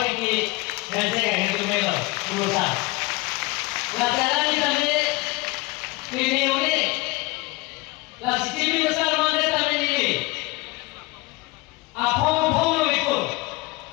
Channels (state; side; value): quieter; right; 24.0 dB